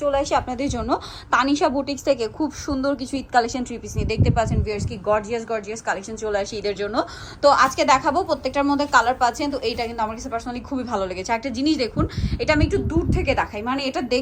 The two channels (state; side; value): identical; both; correlation 1.00